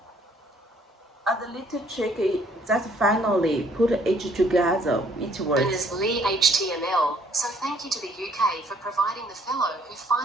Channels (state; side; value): normal; both; correlation 0.63